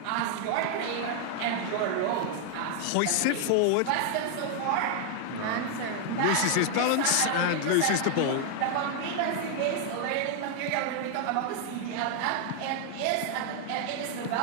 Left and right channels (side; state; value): both; different; correlation 0.00